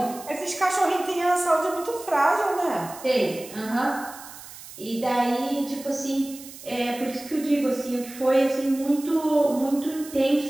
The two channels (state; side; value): noise; right; hiss, 16 dB below the sound